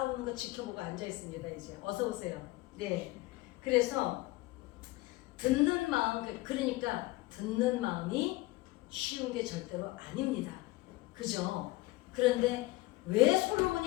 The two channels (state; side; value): quieter; right; 20.1 dB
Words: 거 지켜보고 앉아 있습니다. 이제 어서 오세요. 네. 그래서 듣는 마음, 그러니까 듣는 마음이 쉬운 게 절대로 아닙니다. 그죠? 그런데 왜